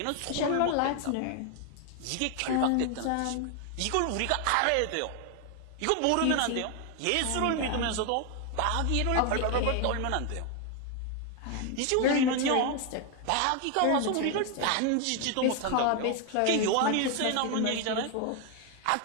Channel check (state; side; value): different; both; correlation 0.01